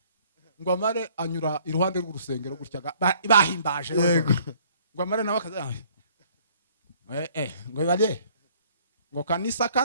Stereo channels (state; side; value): inverted; both; correlation -0.59